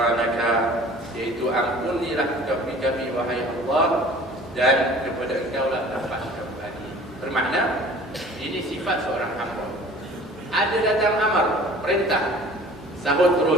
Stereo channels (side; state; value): both; normal; correlation 0.47